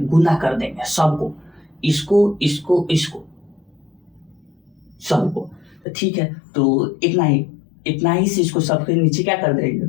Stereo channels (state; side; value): drops out; right; at 5.8 s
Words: कर देंगे सबको, इसको इसको इसको सबको। तो ठीक है, तो इतना ही से इसको सबके नीचे क्या कर देंगे,